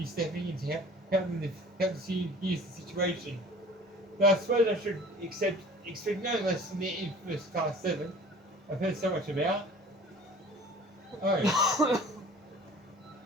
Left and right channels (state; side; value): normal; both; correlation 0.45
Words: stepping in to help you use the situation. But I suppose I should expect no less from the infamous Class 7 I've heard so much about. Oh.